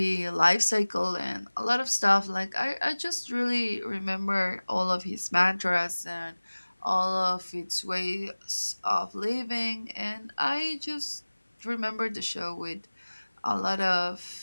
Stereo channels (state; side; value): inverted; both; correlation -1.00